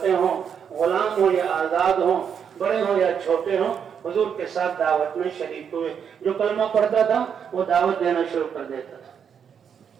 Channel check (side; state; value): left; quieter; 7.5 dB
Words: ہوں، غلام ہوں یا آزاد ہوں، بڑے ہوں یا چھوٹے ہوں، حضور کے ساتھ دعوت میں شریک ہوئے. جو کلمہ پڑھتا تھا وہ دعوت دینا شروع کر دیتا تھا.